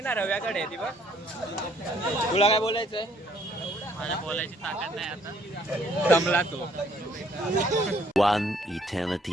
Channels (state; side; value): normal; both; correlation 0.64